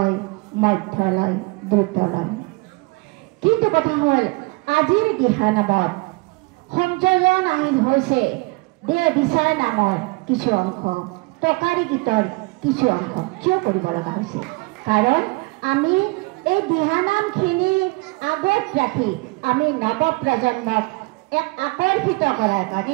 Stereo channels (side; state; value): left; quieter; 25.8 dB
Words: মধ্য লয়, দ্ৰুত লয়, কিন্তু কথা হ'ল আজিৰ দিহানামত সংযোজন আহিল হৈছে দেহ বিচাৰ নামৰ কিছু অংশ, টকাৰী গীতৰ কিছু অংশ। কিয় কৰিব লগা হৈছে? কাৰণ আমি এই দিহানামখিনি আগত ৰাখি আমি নৱ প্ৰজন্মক আকৰ্ষিত কৰাৰ